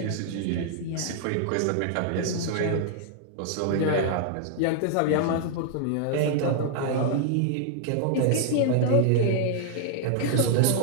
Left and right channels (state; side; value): different; both; correlation 0.00